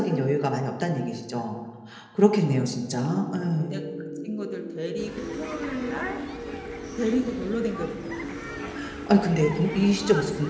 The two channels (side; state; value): both; identical; correlation 1.00